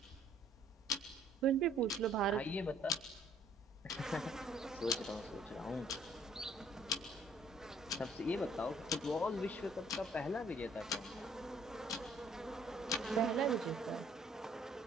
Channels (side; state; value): both; normal; correlation 0.61